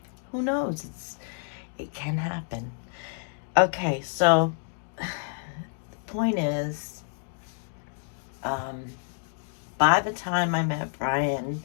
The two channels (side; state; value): right; silent; digital silence